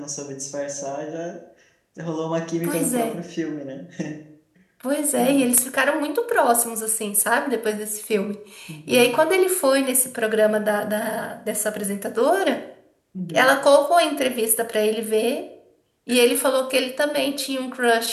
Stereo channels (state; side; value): identical; both; correlation 1.00